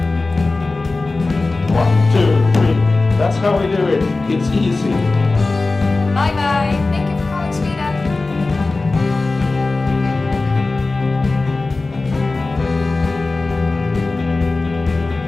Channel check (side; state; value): right; quieter; 3.5 dB